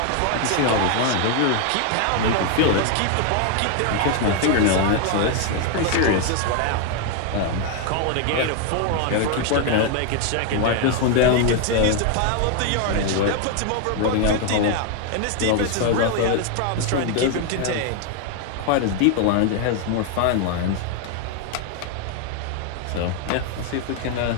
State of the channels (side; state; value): both; different; correlation 0.01